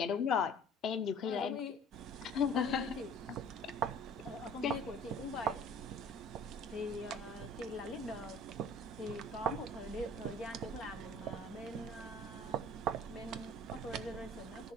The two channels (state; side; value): normal; both; correlation 0.49